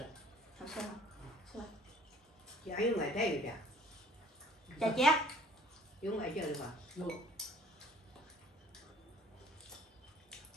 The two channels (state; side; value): normal; both; correlation 0.54